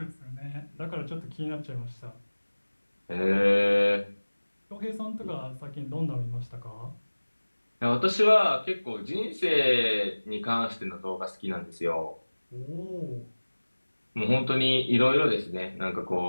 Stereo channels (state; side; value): inverted; both; correlation -1.00